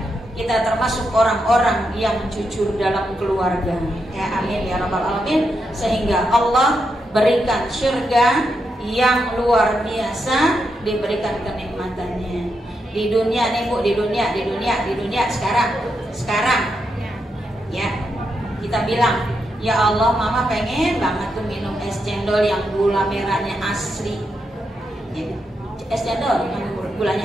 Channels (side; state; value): both; normal; correlation 0.83